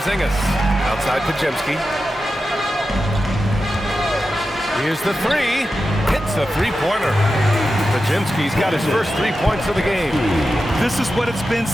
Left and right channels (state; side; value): normal; both; correlation 0.91